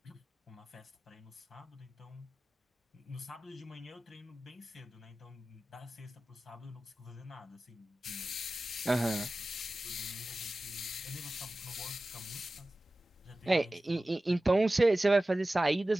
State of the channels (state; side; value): normal; both; correlation 0.96